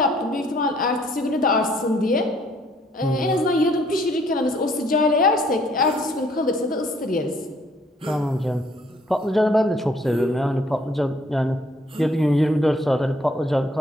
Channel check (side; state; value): both; normal; correlation 0.64